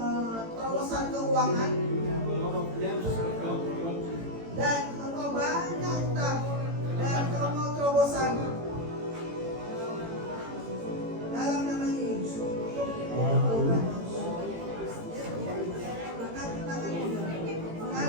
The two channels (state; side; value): late; left; 18 ms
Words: terobosan keuangan You have a lot of debts that God will want to. dan engkau banyak utang dan kau mau terobosan. Dalam nama Yesus. Angkat tanganmu,